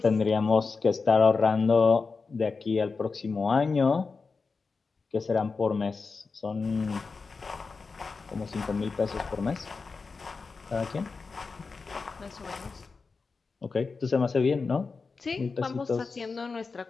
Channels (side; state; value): right; quieter; 4.5 dB